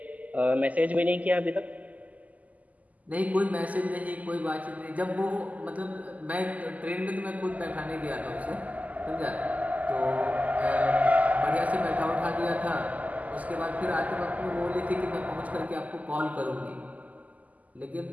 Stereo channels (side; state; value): left; late; 0.076 ms